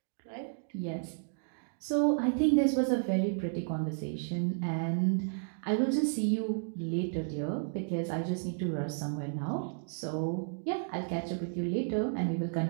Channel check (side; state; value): left; silent; digital silence